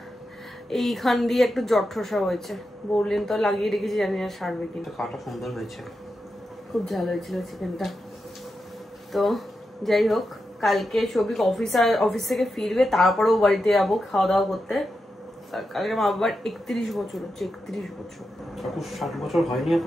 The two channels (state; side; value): normal; both; correlation 0.88